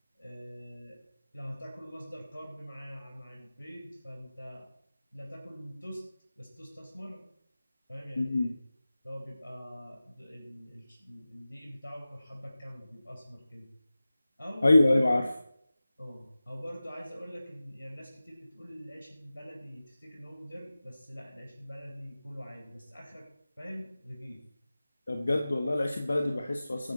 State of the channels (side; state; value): both; inverted; correlation -0.96